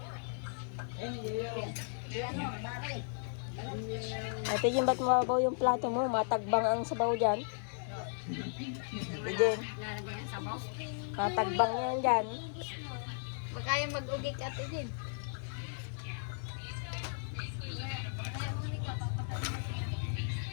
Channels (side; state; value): right; silent; digital silence